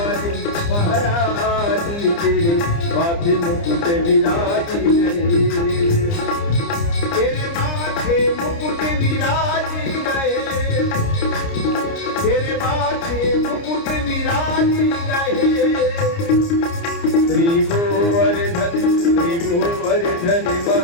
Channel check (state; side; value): late; right; 29 ms